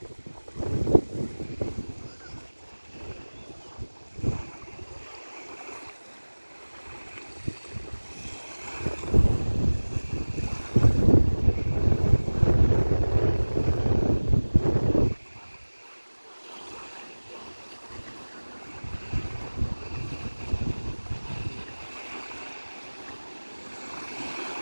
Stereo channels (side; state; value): both; inverted; correlation -1.00